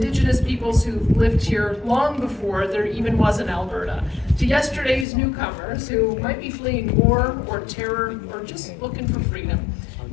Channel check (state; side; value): drops out; right; at 5.1 s